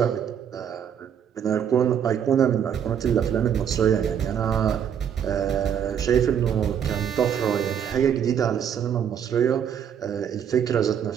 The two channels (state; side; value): quieter; left; 8.6 dB